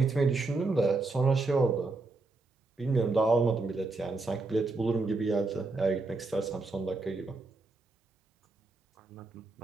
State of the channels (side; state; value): left; quieter; 3.5 dB